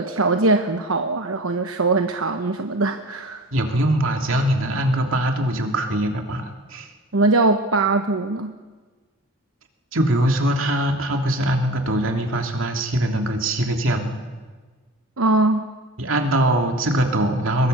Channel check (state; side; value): normal; both; correlation 0.37